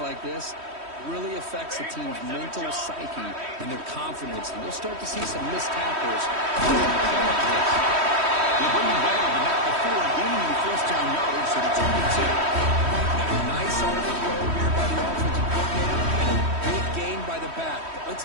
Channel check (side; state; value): left; late; 3.1 ms